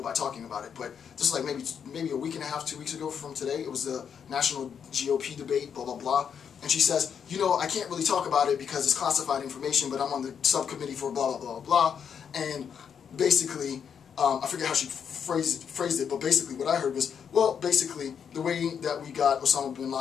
by talking about it, but this is like maybe a week and a half, 2 weeks ago from today. It was the national GOP debate, blah, blah, blah. And she says, you know, I can't really talk about it because it's classified information, but I'm on the subcommittee for blah, blah, blah, blah. And basically, I forget how she phrased it, but basically what I heard was, well, basically, the way that we got Osama bin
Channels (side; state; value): right; quieter; 7.5 dB